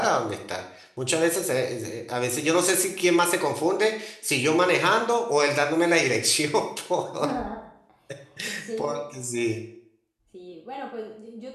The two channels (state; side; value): identical; both; correlation 1.00